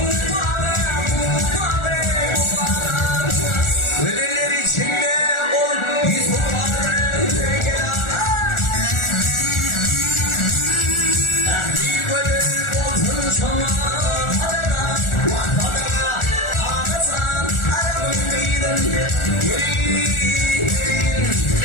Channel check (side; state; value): right; late; 1.4 ms